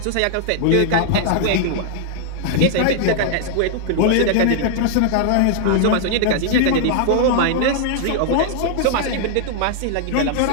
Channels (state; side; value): different; both; correlation -0.01